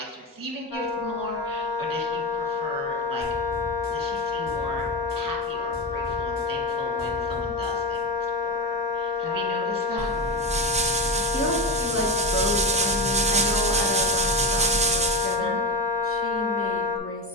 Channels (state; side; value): normal; both; correlation 0.19